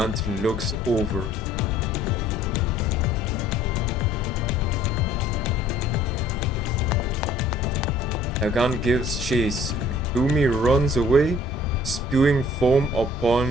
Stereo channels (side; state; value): both; normal; correlation 0.56